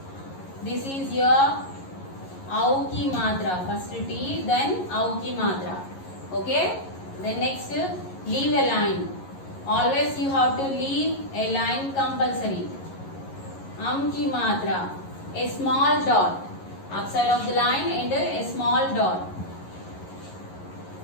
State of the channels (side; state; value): right; late; 11 ms